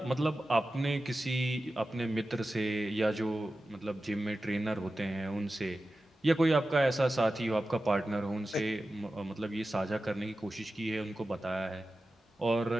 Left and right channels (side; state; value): both; normal; correlation 0.94